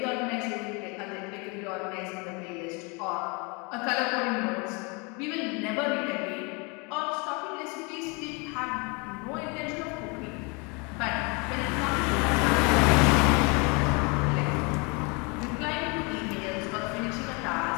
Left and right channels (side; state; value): right; quieter; 30.6 dB